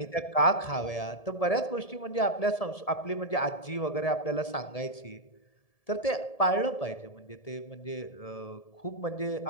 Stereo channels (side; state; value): right; late; 1.7 ms